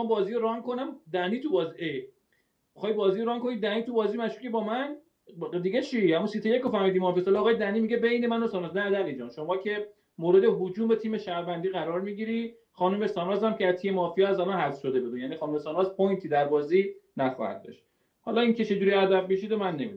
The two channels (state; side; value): identical; both; correlation 1.00